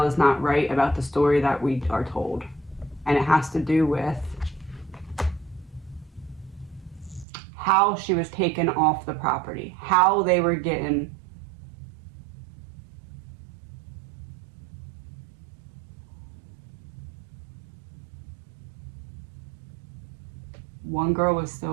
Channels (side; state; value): left; drops out; at 7.2 s